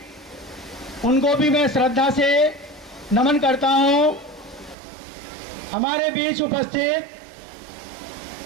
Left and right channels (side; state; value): left; drops out; at 4.8 s